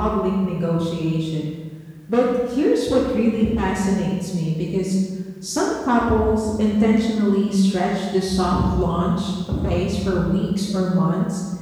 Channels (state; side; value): identical; both; correlation 1.00